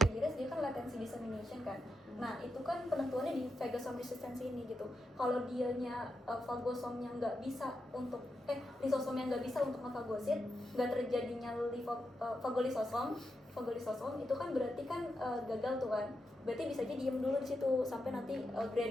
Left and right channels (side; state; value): both; normal; correlation 0.86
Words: gires dia kan latency dissemination kan. Nah, itu kan penentuannya di phagosome resistance ini gitu. Kalau dianya fagosomnya nggak bisa untuk lisosomnya nggak bisa untuk ngefagosit, nggak terjadinya fagolisosom itu kan berarti kan gagal tuh kan. Berarti bisa aja diem dulu di situ sampai nanti